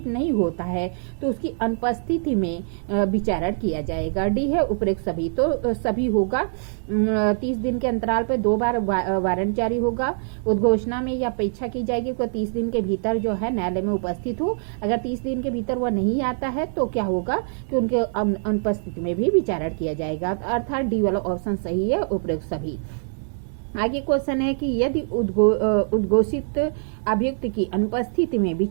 नहीं होता है तो उसकी अनुपस्थिति में विचारण किया जाएगा। डी है उपरोक्त सभी, तो सभी होगा। 30 दिन के अंतराल पर 2 बार वारंट जारी होगा। उद्घोषणा में यह अपेक्षा की जाएगी कि 30 दिन के भीतर जो है न्यायालय में उपस्थित हो। अगर 30 दिन के भीतर वह नहीं आता है तो क्या होगा कि उनके अनुपस्थिति में भी विचारण किया जाएगा। अर्थात डी वाला ऑप्शन सही है, उपरोक्त सभी। आगे क्वेश्चन है कि यदि उद्घोषित अभियुक्त की अनुपस्थिति में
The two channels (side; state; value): left; silent; digital silence